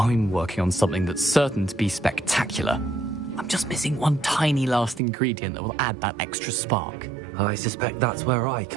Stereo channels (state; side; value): drops out; left; at 5.0 s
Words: working on something that's certain to be spectacular. I'm just missing one tiny last ingredient that will add that extra spark. I suspect that's where I